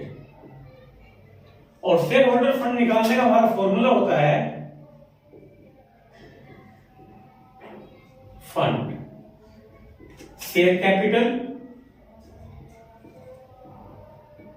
और शेयर होल्डर फंड निकालने का हमारा फॉर्मूला होता है fund share capital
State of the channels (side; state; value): both; identical; correlation 1.00